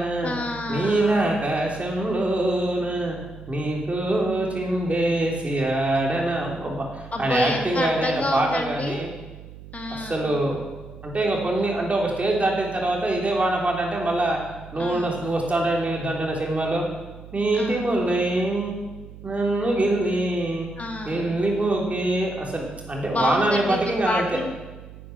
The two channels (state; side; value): noise; right; hum, 16 dB below the sound